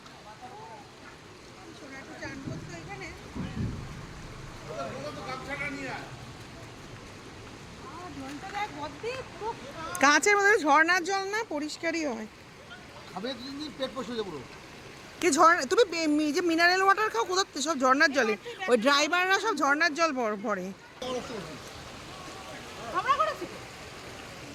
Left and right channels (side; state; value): both; identical; correlation 1.00